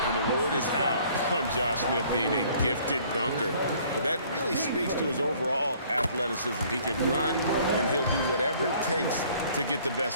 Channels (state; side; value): inverted; both; correlation -0.58